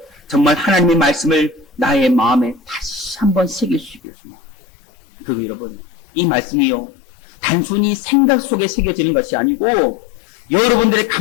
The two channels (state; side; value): drops out; right; at 4.0 s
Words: 정말 하나님의 말씀을 나의 마음에 다시 한번 새길 수 있기를 소망합니다. 그리고 여러분, 이 말씀이요, 단순히 생각 속에 새겨지는 것이 아니고 여러분들의